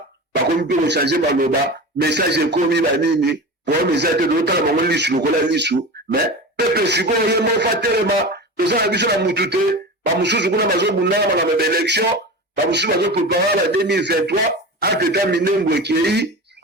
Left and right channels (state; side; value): normal; both; correlation 0.29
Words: bakomi mpe kochange maloba message ekomi banini problème eza te totala bango lisu lokola lisu mais pepe sikoyo ye moko atelema toza na biso na mutu te bamosusu kuna bazobundanga makambo ya baélection bamosusu bazoprépare na 2023 anteta minembo ekei